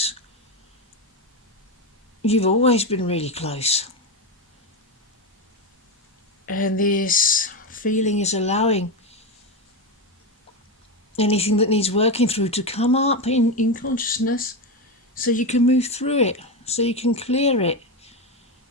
you've always been really close. And this feeling is allowing anything that needs working through to come up in consciousness, so you can move through it, so you can clear it,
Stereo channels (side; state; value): both; normal; correlation 0.13